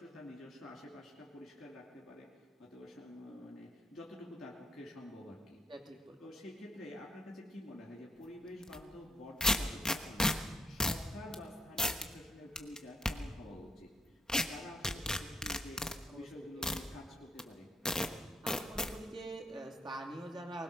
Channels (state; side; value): normal; both; correlation 0.68